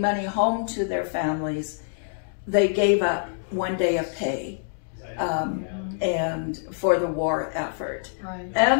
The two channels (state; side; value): silent; right; digital silence